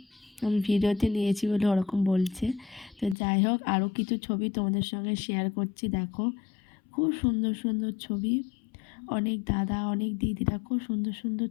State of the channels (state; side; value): drops out; right; at 3.2 s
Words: আমি ভিডিওতে নিয়েছি বলে ওরকম বলছে। তো যাই হোক, আরও কিছু ছবি তোমাদের সঙ্গে শেয়ার করছি, দেখো, খুব সুন্দর সুন্দর ছবি। অনেক দাদা, অনেক দিদিরা খুব সুন্দর সুন্দর